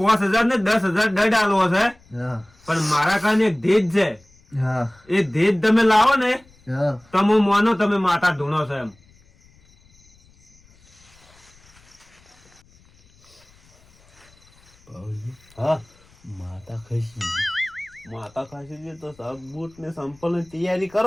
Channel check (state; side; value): noise; left; rumble, 30 dB below the sound